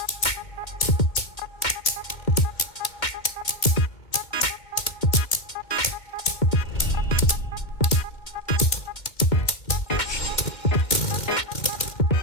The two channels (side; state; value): right; late; 2.4 ms